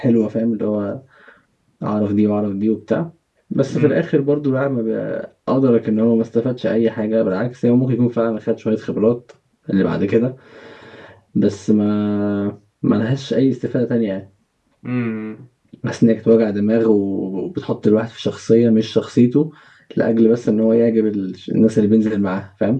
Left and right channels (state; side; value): identical; both; correlation 1.00